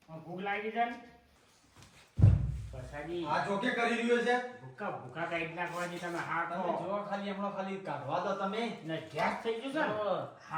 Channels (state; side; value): identical; both; correlation 1.00